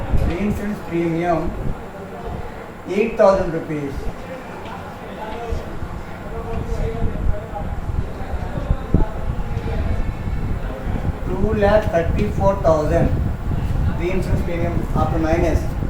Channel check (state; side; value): identical; both; correlation 1.00